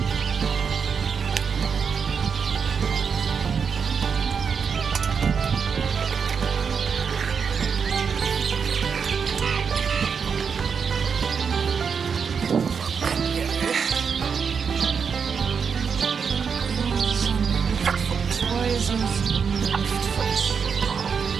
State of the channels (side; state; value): left; quieter; 6.2 dB